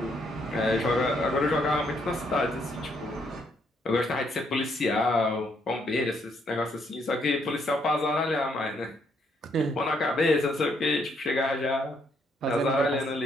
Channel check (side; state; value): both; normal; correlation 0.72